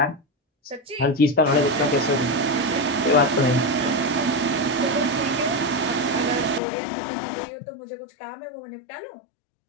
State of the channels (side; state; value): right; drops out; at 6.6 s